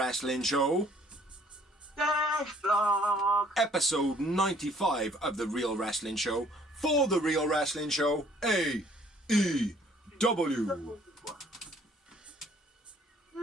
Show. Episode 95 of The Real Wrestling Show for The Real Wrestling Show AEW.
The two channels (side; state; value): both; normal; correlation 0.59